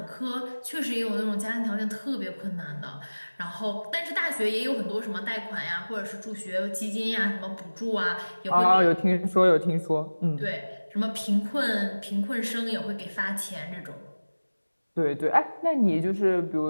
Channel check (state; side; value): inverted; both; correlation -1.00